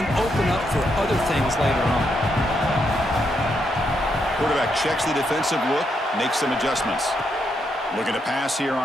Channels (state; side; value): normal; both; correlation 0.79